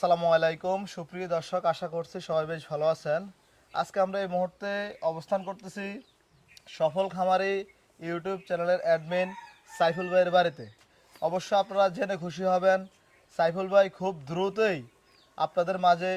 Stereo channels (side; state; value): both; identical; correlation 1.00